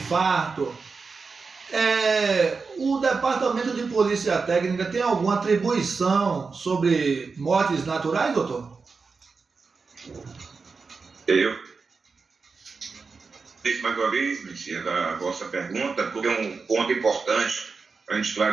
o Departamento de Polícia Técnica tem alguma atribuição sobre mortes naturais, doutor? Mais uma vez, Messias, a vossa pergunta, porque é um ponto importante para a gente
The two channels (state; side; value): quieter; left; 4.7 dB